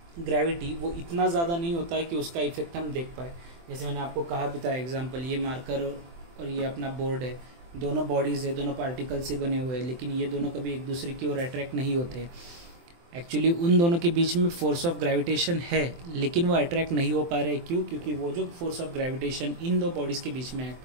ग्रेविटी, वो इतना ज़्यादा नहीं होता है कि उसका इफेक्ट हम देख पाए. जैसे मैंने आपको कहा भी था एग्जाम्पल, ये मार्कर और ये अपना बोर्ड है, दोनों बॉडीज़ है, दोनों पार्टिकल से बने हुए हैं, लेकिन ये दोनों कभी एक दूसरे की ओर अट्रैक्ट नहीं होते. एक्चुअली उन दोनों के बीच में फोर्स ऑफ ग्रेविटेशन है, लेकिन वो अट्रैक्ट नहीं हो पा रहे. क्यों? क्योंकि वो जो फोर्स ऑफ ग्रेविटेशन इन दो बॉडीज़ के बीच में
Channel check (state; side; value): late; left; 24 ms